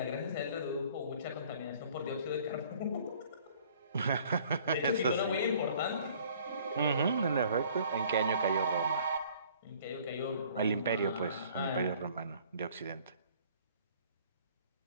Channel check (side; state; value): both; inverted; correlation -0.55